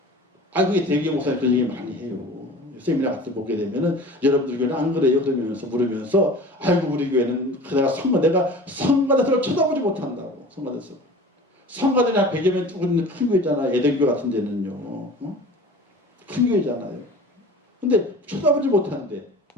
그게 대개 목사님 그런 얘기 많이 해요. 세미나 같은 거 보게 되면은 여러분들 교회는 안 그래요? 그러면서 물으면서 아이고 우리 교회는 내가 성가대성을 쳐다보지 못한다고. 성가대성. 성가대는 한 100여 명 두고 있는 큰 교회잖아. 예대교 같은 데는요. 큰 교회잖아요. 근데 쳐다보지 못하는데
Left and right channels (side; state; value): both; normal; correlation 0.40